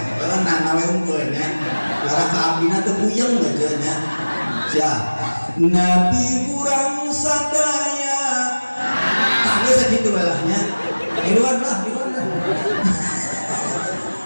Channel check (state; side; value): inverted; both; correlation -1.00